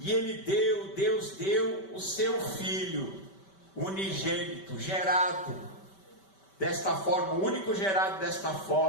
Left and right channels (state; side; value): late; right; 5.2 ms